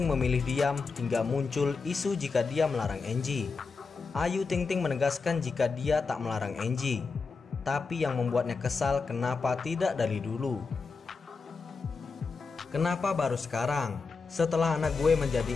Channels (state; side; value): quieter; right; 4.6 dB